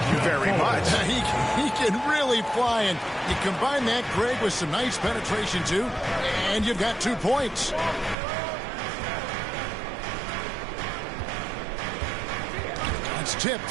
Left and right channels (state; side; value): drops out; left; at 8.2 s